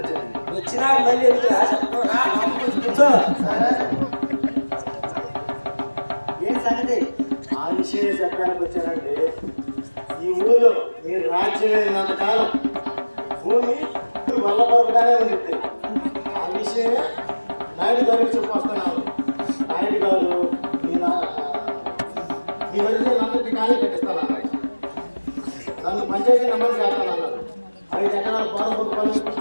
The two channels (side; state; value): both; inverted; correlation -1.00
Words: వచ్చినా మళ్ళీ ఏం సంగతి? ఆ విషయం చెప్పడానికి వచ్చానండి. ఈ ఊళ్ళో మీరు రాజ్యం అయినంత కాలం భూమి వల్లబరుగానే ఉంది. ఆ విషయమే నాయుడు గారికి చెప్పొస్తున్నాను. నాయుడు గారు మీ వదిలే అందరికీ ఖాళీ కట్టిస్తానన్నారు. నన్ను పంచాయతీ నెంబర్ చేస్తానన్నారు. 5 ఎకరాల పొలం